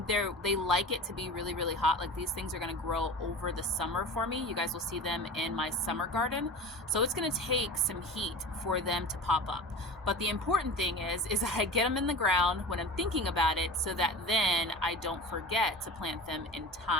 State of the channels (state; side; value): normal; both; correlation 0.34